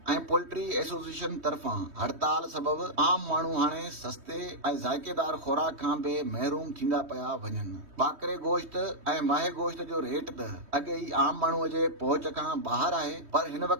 ऐं पोल्ट्री एसोसिएशन तरफ़ां हड़ताल सबब आम माण्हू हाणे सस्ते ऐं ज़ाइकेदार खुराक खां बि महरूम थींदा पिया वञनि। ॿाकरे गोश्त ऐं माहे गोश्त जो रेट त अॻे ई आम माण्हूअ जे पहुच खां ॿाहिरि आहे, पर हिन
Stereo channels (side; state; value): left; late; 3.2 ms